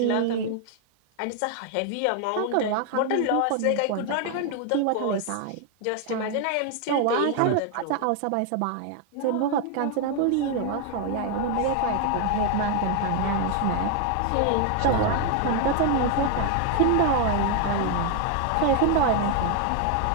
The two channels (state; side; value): different; both; correlation 0.00